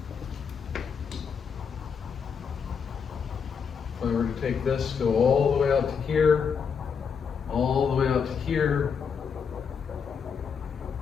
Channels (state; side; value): quieter; right; 6.4 dB